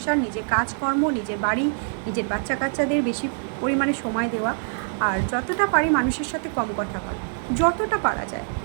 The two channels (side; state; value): left; silent; digital silence